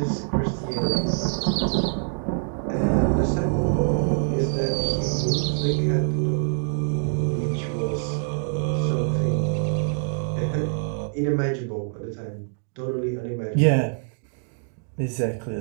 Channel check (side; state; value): left; silent; 61 dB below the other